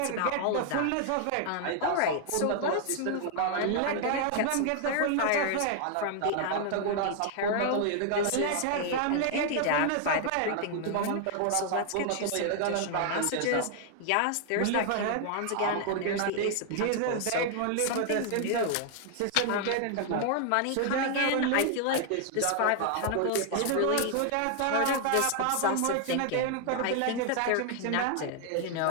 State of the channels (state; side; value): different; both; correlation 0.00